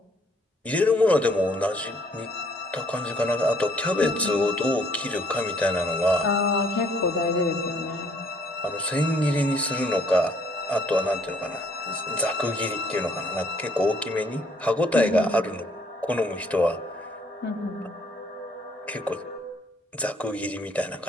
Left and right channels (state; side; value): normal; both; correlation 0.64